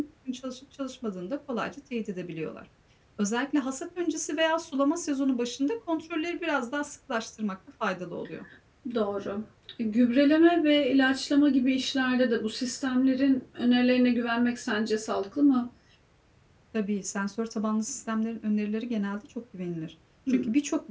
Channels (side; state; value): both; identical; correlation 1.00